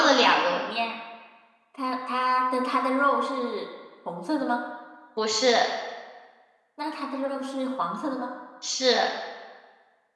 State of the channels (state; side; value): identical; both; correlation 1.00